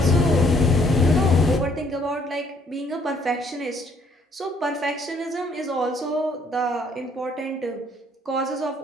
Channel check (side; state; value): both; normal; correlation 0.65